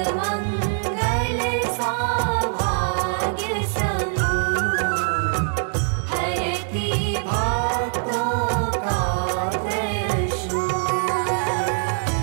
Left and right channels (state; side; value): silent; left; 62 dB below the other